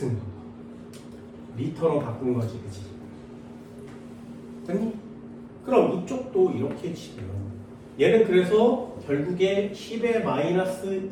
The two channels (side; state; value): both; identical; correlation 1.00